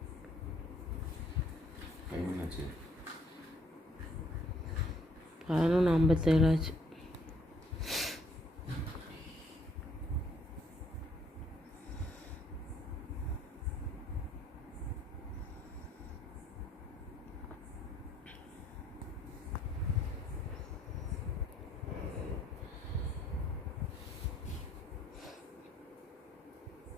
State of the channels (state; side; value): normal; both; correlation 0.64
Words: டைம் என்னாச்சு? 11:57 ஆச்சு.